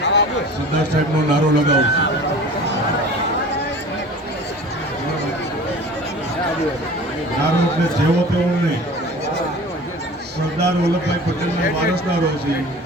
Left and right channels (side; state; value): both; normal; correlation 0.41